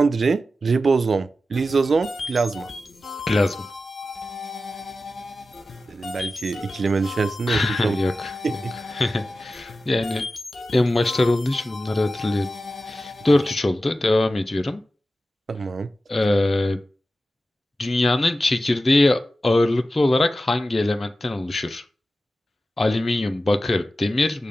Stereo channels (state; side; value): normal; both; correlation 0.93